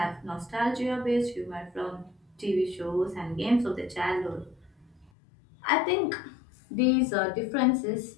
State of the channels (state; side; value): drops out; right; at 5.1 s